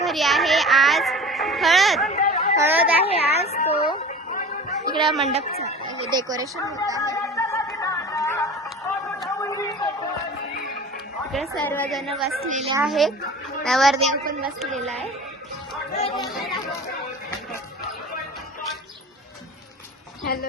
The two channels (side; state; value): both; normal; correlation 0.38